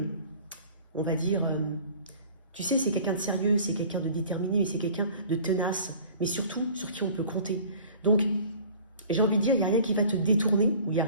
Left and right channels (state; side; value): inverted; both; correlation -0.47